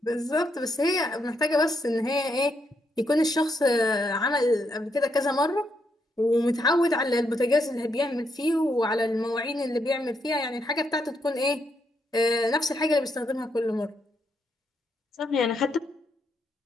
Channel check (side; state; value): both; normal; correlation 0.78